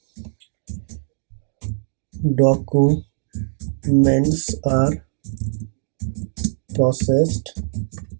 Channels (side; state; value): left; silent; digital silence